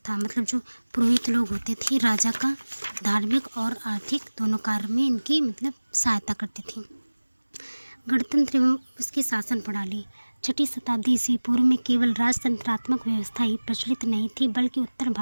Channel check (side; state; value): both; inverted; correlation -1.00